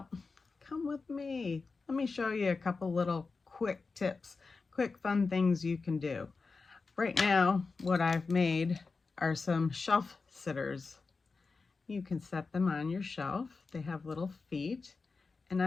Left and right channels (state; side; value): quieter; right; 4.3 dB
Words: come with me. Let me show you a couple little quick tips, quick fun things you can do. Right now, what I've made are some shelf sitters. You can set them on your shelf. They have little feet, and